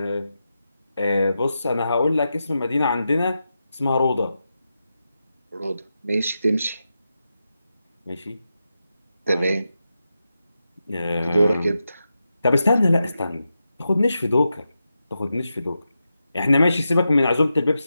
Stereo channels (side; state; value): both; inverted; correlation -0.89